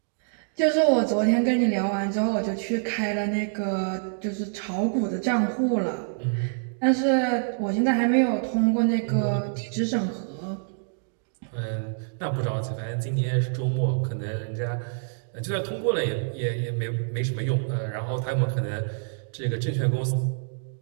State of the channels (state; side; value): silent; left; digital silence